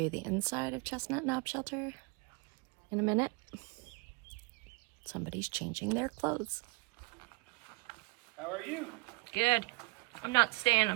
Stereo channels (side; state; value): left; quieter; 26.4 dB